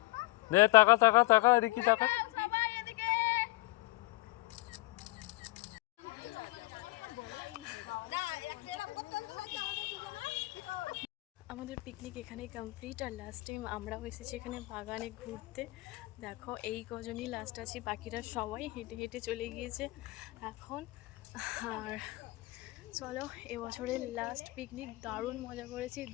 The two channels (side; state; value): right; quieter; 21.4 dB